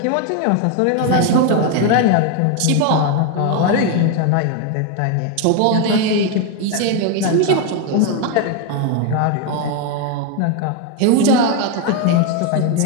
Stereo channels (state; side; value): different; both; correlation 0.01